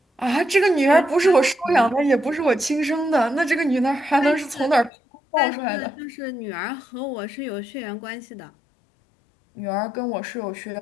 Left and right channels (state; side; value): drops out; right; at 4.9 s